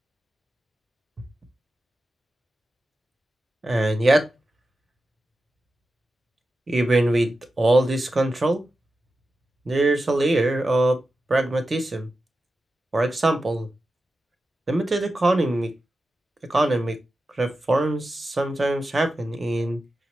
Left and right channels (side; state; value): both; normal; correlation 0.92